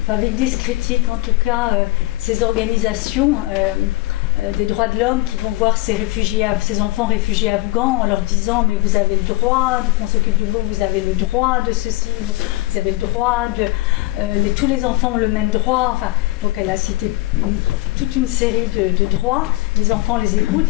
avec des critiques, en tout cas, ces organisations des droits de l'homme qui vont voir ces enfants réfugiés afghans en leur disant mais vous avez le droit qu'on s'occupe de vous, vous avez le droit de ceci, vous avez le droit de... tous les enfants ont le même droit. Enfin, donc elle a cité toute une série de droits. Les enfants les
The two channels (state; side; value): quieter; right; 19.5 dB